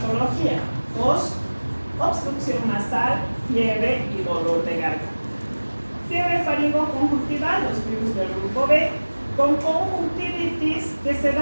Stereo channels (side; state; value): both; inverted; correlation -1.00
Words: Tos, obstrucción nasal, fiebre y dolor de garganta. Fiebre faringoconjuntival, los virus del grupo B, con conjuntivitis que se